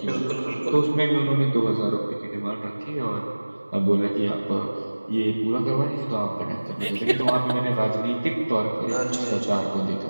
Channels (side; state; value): both; inverted; correlation -1.00